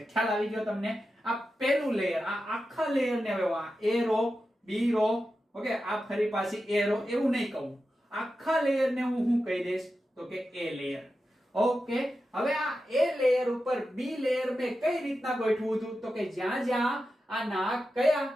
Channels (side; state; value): both; normal; correlation 0.91